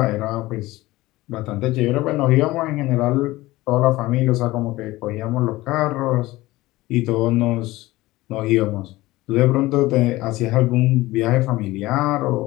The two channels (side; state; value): right; quieter; 18.7 dB